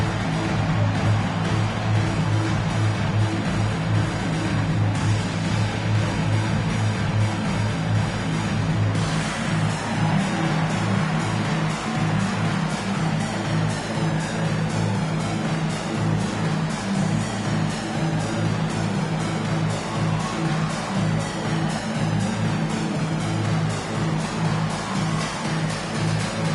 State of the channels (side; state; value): both; identical; correlation 1.00